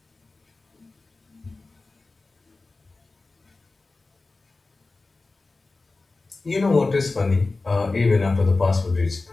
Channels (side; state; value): right; quieter; 3.5 dB